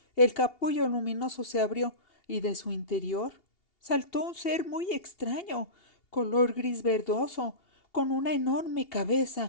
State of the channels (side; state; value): right; late; 2.8 ms